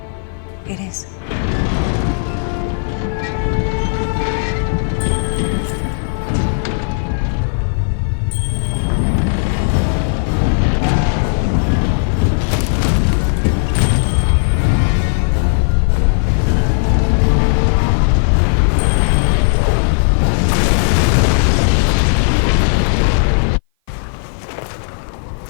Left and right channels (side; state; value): right; silent; 57 dB below the other